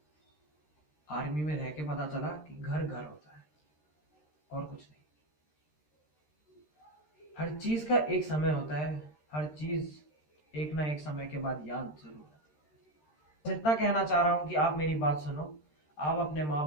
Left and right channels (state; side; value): late; right; 13 ms